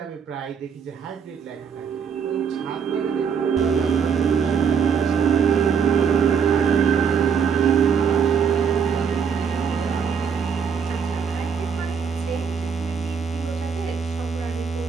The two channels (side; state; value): left; quieter; 6.8 dB